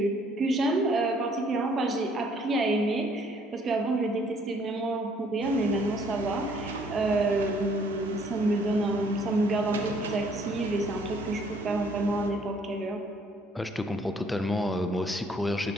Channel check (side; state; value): both; normal; correlation 0.62